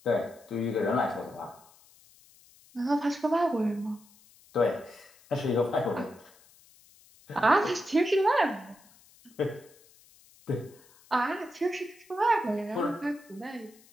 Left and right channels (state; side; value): noise; left; hiss, 27 dB below the sound